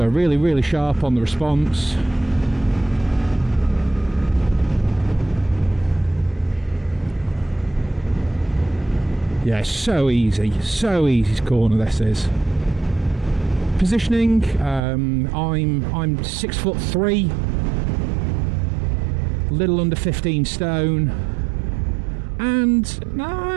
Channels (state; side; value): drops out; left; at 14.8 s